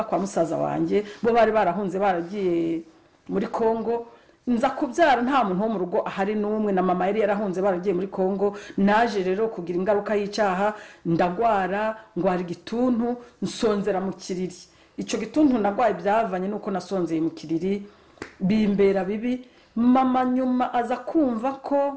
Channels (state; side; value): identical; both; correlation 1.00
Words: kwa musaza wanjye. Bo bari barahunze, baragiye muri Kongo. nza kubyara nta muntu wo mu rugo ahari n'umwe, na mama yari yarahunze baragiye muri Kongo. Naje rero kugira ingaruka y'icyaha, ndagwara, ngwara igituntu, nsonzera mu kiriri. Icyo gituntu nagwaye byavanye nuko nasonzeye mu kiriri, bimbera bibi. Mama nyuma aza kumva